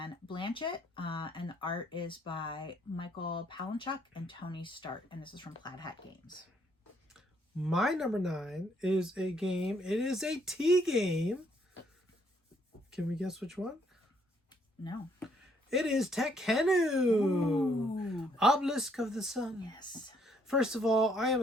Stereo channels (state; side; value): normal; both; correlation 0.69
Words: Blanchett, and the art is by Michael Palinchuk and Tony Start, and this is from Plaid Hat Games. My number 9 is a game. It is a tea game. Can we guess which one? No. It is Tekkenu. Obelisk of the Sun. Yes. First of all, I am